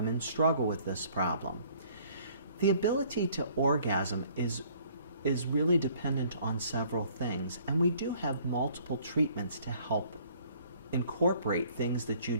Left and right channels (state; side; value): inverted; both; correlation -0.58